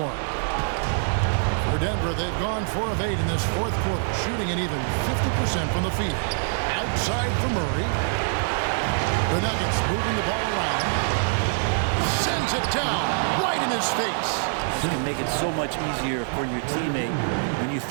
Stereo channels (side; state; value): left; silent; digital silence